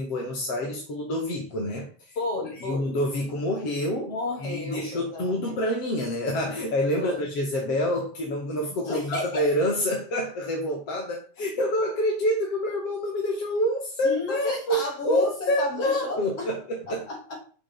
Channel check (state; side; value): late; right; 7.3 ms